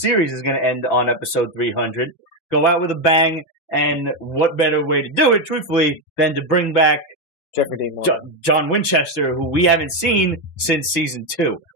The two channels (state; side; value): late; right; 5.9 ms